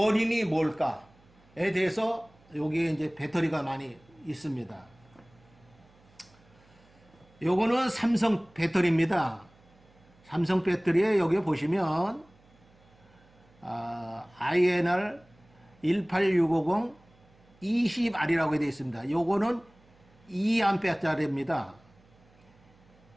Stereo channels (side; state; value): right; noise; hum, 29 dB below the sound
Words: 뭘까에 대해서 여기에 이제 배터리가 많이 있습니다. 요거는 삼성 배터리입니다. 삼성 배터리에 여기 보시면 INR 18650 20R이라고 되어 있습니다. 요거는 2A짜리입니다.